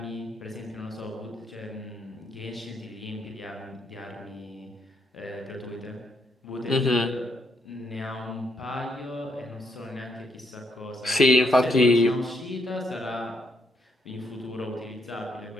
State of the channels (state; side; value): normal; both; correlation 0.75